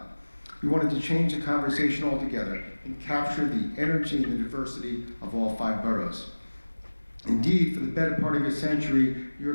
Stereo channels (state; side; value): inverted; both; correlation -1.00